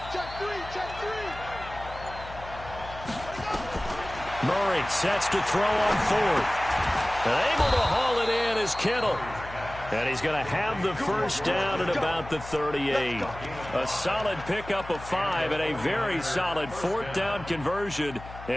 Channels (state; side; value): noise; left; hum, 14 dB below the sound